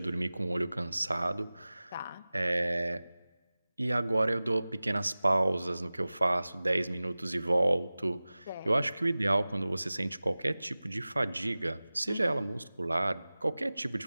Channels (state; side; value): inverted; both; correlation -0.98